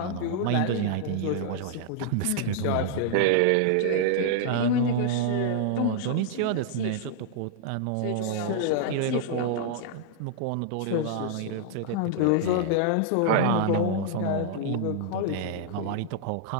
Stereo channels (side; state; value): both; different; correlation -0.01